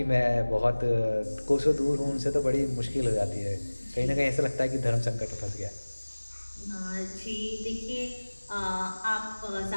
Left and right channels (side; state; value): both; inverted; correlation -1.00